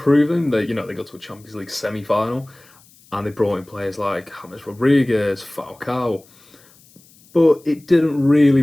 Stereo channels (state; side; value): noise; left; hiss, 28 dB below the sound